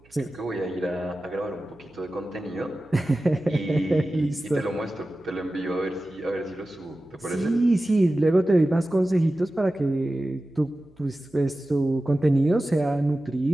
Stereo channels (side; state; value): right; noise; hum, 29 dB below the sound